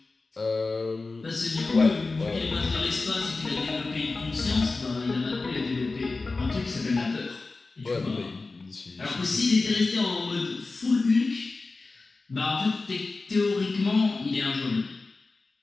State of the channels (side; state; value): right; quieter; 3.7 dB